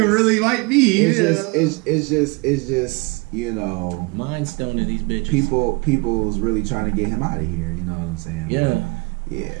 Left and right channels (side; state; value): left; quieter; 28.1 dB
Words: really like me. It's just mind stoning these bitches. People was really trying to get him out of here. You know what I'm saying? Yeah. Yeah.